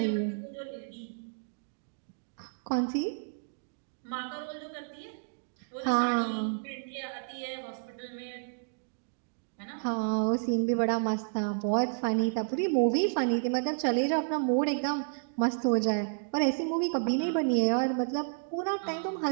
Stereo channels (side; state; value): left; silent; digital silence